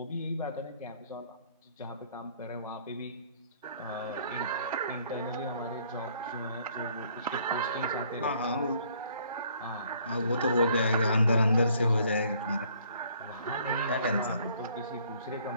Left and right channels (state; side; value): inverted; both; correlation -0.61